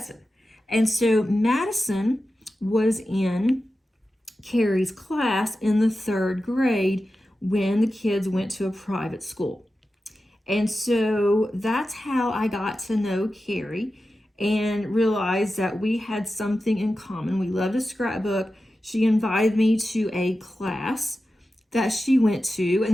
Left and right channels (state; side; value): normal; both; correlation 0.93